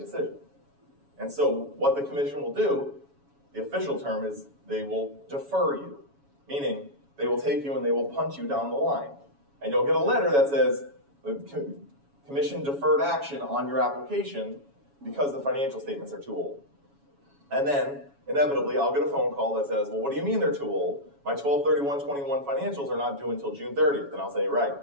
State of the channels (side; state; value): left; late; 7.2 ms